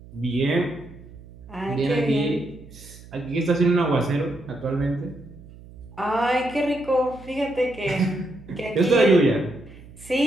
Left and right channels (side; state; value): right; noise; hum, 19 dB below the sound